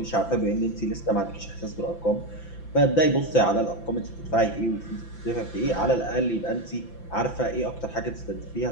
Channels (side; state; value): right; late; 5.9 ms